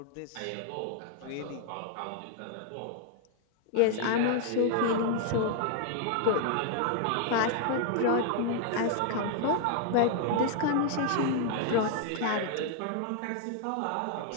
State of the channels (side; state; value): both; different; correlation 0.00